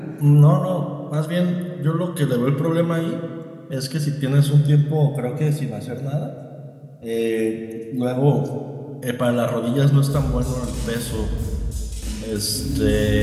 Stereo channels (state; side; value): identical; both; correlation 1.00